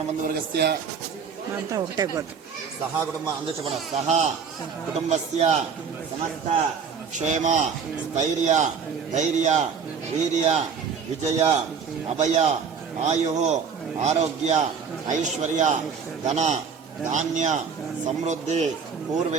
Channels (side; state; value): left; quieter; 6.2 dB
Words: సహా కుటుంబ అందరూ చెప్పండి. సహా కుటుంబస్య సమస్త క్షేమ స్థైర్య ధైర్య వీర్య విజయ అభయ ఆయు ఆరోగ్య ఐశ్వర్య ధన ధాన్య సమృద్ధి